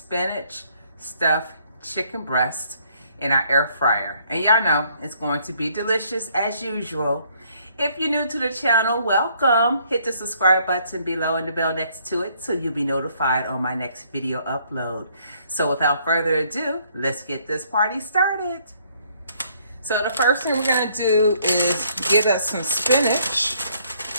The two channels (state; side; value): inverted; both; correlation -0.65